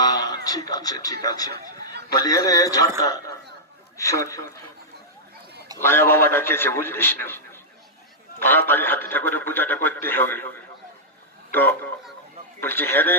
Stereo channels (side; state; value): both; normal; correlation -0.09